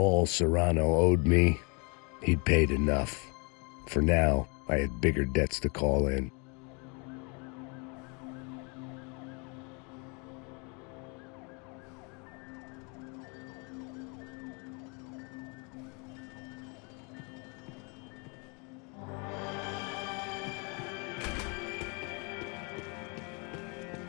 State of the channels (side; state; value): right; quieter; 32.8 dB